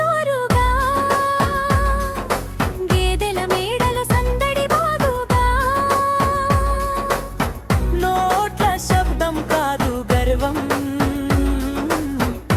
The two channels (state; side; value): identical; both; correlation 1.00